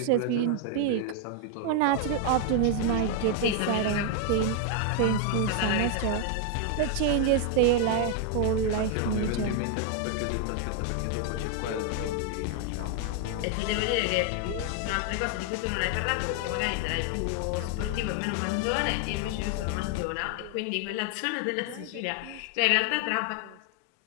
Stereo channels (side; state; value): both; different; correlation 0.00